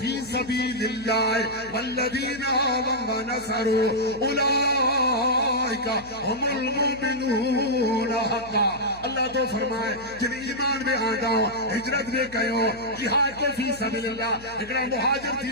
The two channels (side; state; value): left; noise; hum, 20 dB below the sound